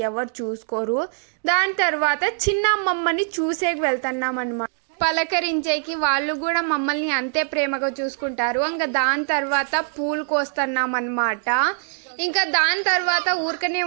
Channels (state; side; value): silent; left; digital silence